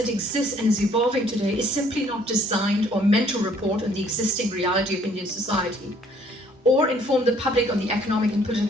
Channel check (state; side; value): normal; both; correlation 0.61